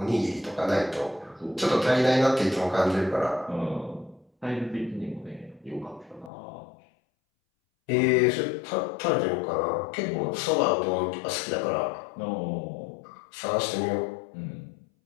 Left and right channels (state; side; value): drops out; right; at 6.3 s